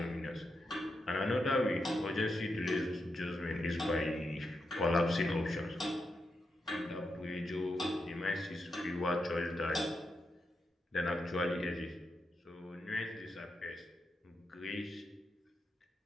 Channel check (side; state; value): both; normal; correlation 0.85